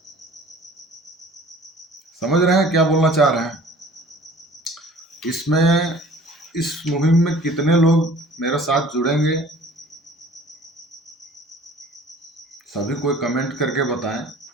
समझ रहे हैं क्या बोलना चाह रहे हैं? इसमें इस मुहिम में कितने लोग मेरे साथ जुड़ेंगे, सभी कोई कमेंट करके बताएं।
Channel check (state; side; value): normal; both; correlation 0.48